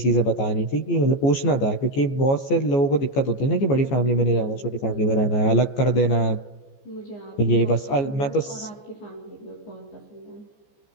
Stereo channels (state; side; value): late; right; 14 ms